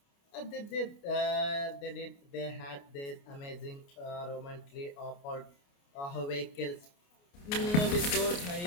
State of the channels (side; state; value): right; late; 29 ms